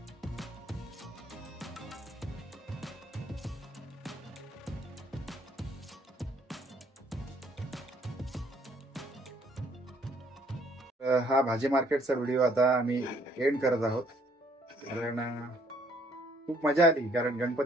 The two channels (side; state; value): both; normal; correlation 0.64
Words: हा भाजी मार्केटचा व्हिडिओ आता आम्ही एंड करत आहोत. कारण खूप मजा आली. कारण